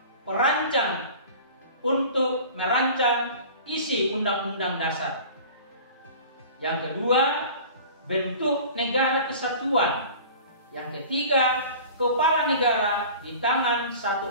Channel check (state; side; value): inverted; both; correlation -0.41